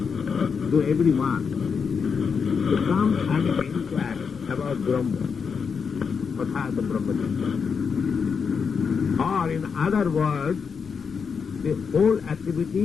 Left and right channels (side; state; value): right; quieter; 6.0 dB